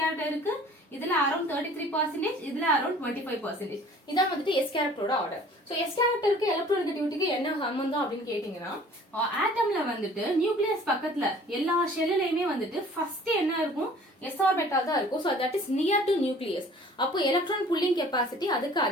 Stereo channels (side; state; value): both; normal; correlation 0.50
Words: இருக்கு, இதுல அரௌண்ட் 33%, இதுல அரௌண்ட் 25%. இதான் வந்துட்டு s கேரக்டரோட ஆர்டர். சோ s கேரக்டருக்கு எலக்ட்ரோநெகட்டிவிட்டிக்கு என்ன சம்பந்தம் அப்படின்னு கேட்டீங்கன்னா, ஆட்டம்ல வந்துட்டு நியூக்ளியஸ் பக்கத்துல எல்லா ஷெல்லுலயுமே வந்துட்டு ஃபர்ஸ்ட் என்ன இருக்கும்? s ஆர்பிட்டால் தான் இருக்கும். So that is near to nucleus. அப்போ எலக்ட்ரான் புல்லிங் கெபாசிட்டி அதுக்கு